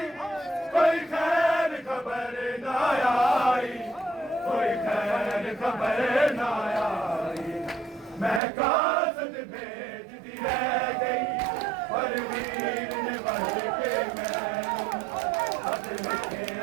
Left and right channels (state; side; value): drops out; left; at 8.4 s